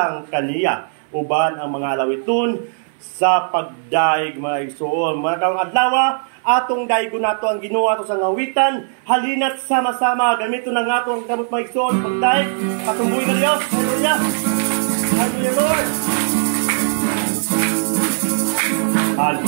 kaniya, uban ang mga lawiton sa pagdaig mga igsoon. Mga karong adlaw, atong daigo nato ang Ginoo ato sa ngawitan, halina't sama-sama gamito na nga ato ang kamot mga igsoon pagdaig, patumboy nga Dios. Hallelujah. Hallelujah, Lord.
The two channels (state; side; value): silent; left; 61 dB below the other